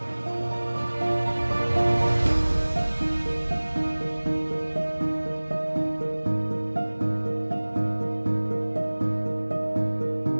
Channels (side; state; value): both; inverted; correlation -1.00